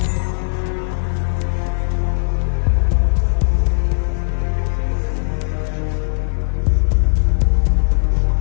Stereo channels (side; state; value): right; silent; digital silence